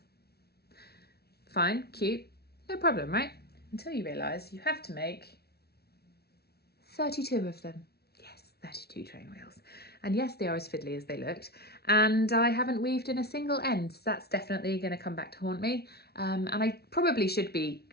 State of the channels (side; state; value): right; late; 0.46 ms